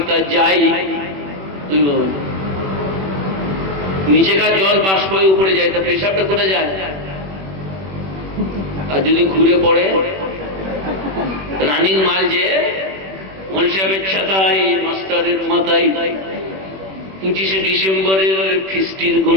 যায়? নিচেকার জল বাষ্প হয়ে উপরে যায়, তা পেশাবটা কোথা যায়? আর যদি ঘুরে পড়ে রানিং মাল, যে মল সাহেবের ছাতায়, মাস্টারের মাথায় 25শে ডিসেম্বরের ফিস্টির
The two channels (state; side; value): late; left; 21 ms